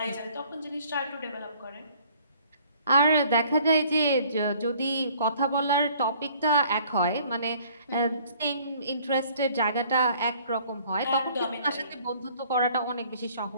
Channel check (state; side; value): inverted; both; correlation -0.57